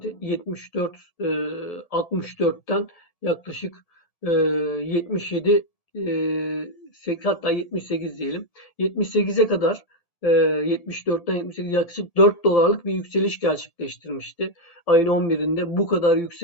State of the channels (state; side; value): late; right; 1.8 ms